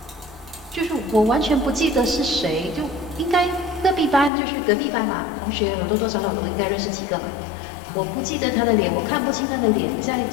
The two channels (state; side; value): drops out; right; at 4.3 s